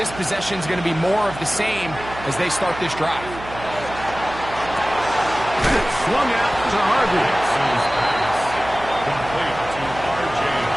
possession is going to be more of the same as they start this drive. And swung out to Harvey. Complete to R.J.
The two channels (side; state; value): right; noise; hum, 13 dB below the sound